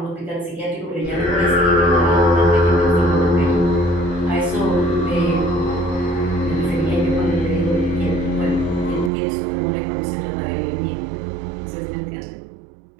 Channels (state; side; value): drops out; left; at 9.1 s